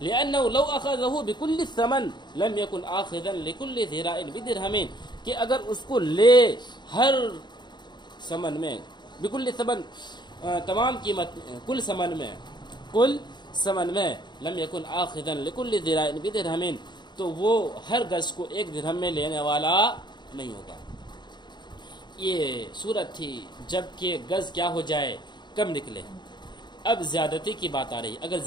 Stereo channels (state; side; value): late; right; 0.21 ms